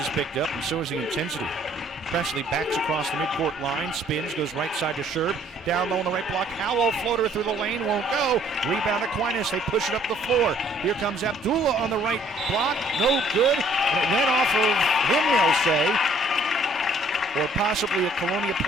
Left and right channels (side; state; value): both; normal; correlation 0.60